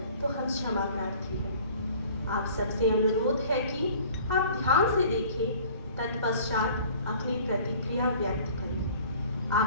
तो हम क्षमा प्रार्थी हैं। आप सबसे अनुरोध है कि आप ध्यान से देखें, तत्पश्चात अपनी प्रतिक्रिया व्यक्त करें।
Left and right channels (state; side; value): inverted; both; correlation -0.50